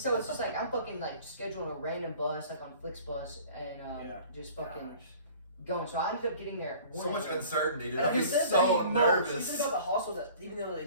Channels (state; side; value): inverted; both; correlation -0.48